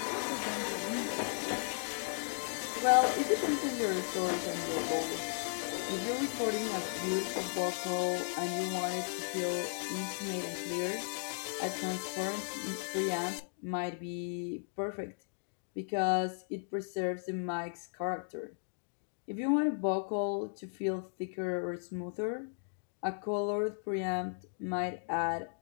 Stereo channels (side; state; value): right; silent; digital silence